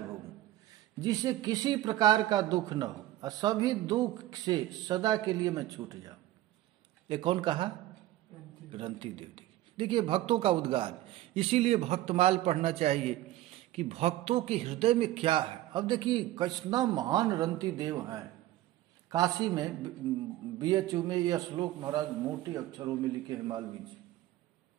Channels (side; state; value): left; quieter; 15.1 dB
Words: जिससे किसी प्रकार का दुख न हो और सभी दुख से सदा के लिए मैं छूट जाऊं। ये कौन कहा? रंती देव। देखिए भक्तों का उद्गार, इसीलिए भक्तमाल पढ़ना चाहिए कि भक्तों के हृदय में क्या है। अब देखिए कितना महान रंती देव हैं। काशी में BHU में यह श्लोक महाराज मोटे अक्षरों में लिखे हैं मालवीय जी